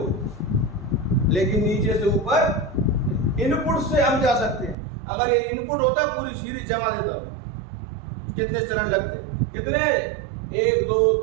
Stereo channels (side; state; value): left; drops out; at 4.8 s